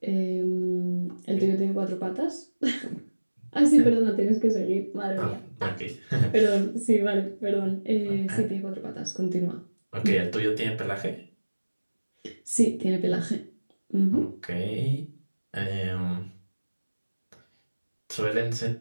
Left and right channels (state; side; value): inverted; both; correlation -1.00